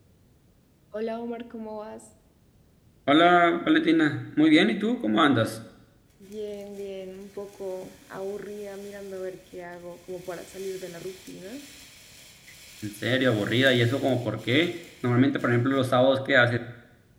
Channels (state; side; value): identical; both; correlation 1.00